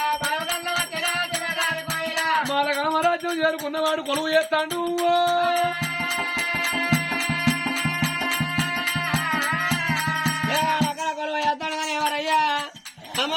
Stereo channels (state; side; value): identical; both; correlation 1.00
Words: మాలగామరాజ్యం చేరుకున్నవాడు కొలువు చేస్తాడు. కొలువు చేస్తాడు కానీ ఎవరయ్యా